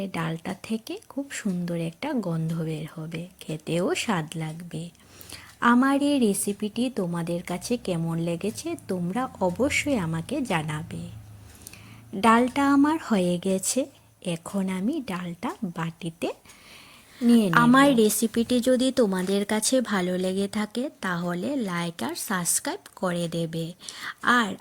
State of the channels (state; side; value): identical; both; correlation 1.00